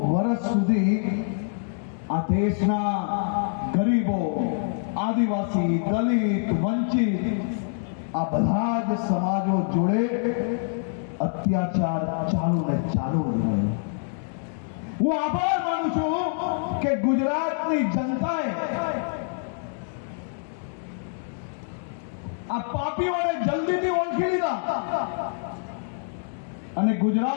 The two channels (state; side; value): silent; right; digital silence